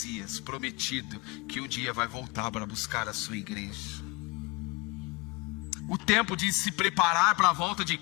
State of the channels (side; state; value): right; quieter; 25.6 dB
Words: prometido, que um dia vai voltar para buscar a sua igreja. O tempo de se preparar para a volta de